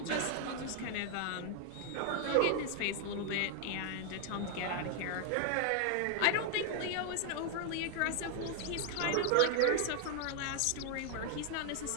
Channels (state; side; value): different; both; correlation 0.00